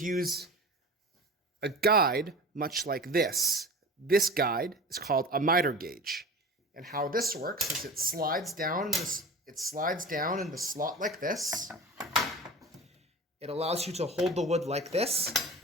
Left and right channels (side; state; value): both; normal; correlation 0.35